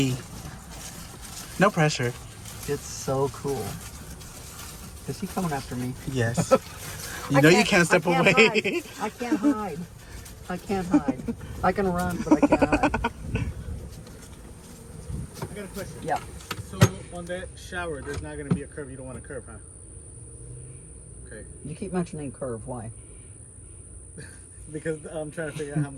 No pressure. It's so cool. Is he coming after me? Yes. You know you can't step away. I can't hide. I can run, but I can't hide. I got a question. Yeah. So on that shower, there's not going to be a curve. You don't want a curve, huh? Okay. You keep mentioning curve. Why? Because I'm trying to figure out how I'm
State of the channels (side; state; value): both; identical; correlation 1.00